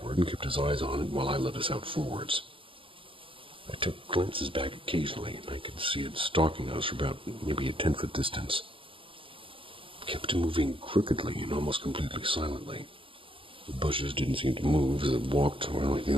and kept his eyes on it while I led us out forwards. I took glances back occasionally, and I could see it stalking us for about maybe a 10-foot distance. It kept moving crookedly and almost completely silently. The bushes didn't seem to move as it walked, or the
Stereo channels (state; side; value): late; left; 0.25 ms